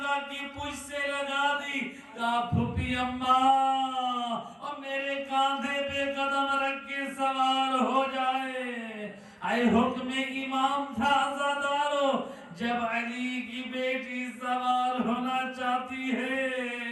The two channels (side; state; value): both; identical; correlation 1.00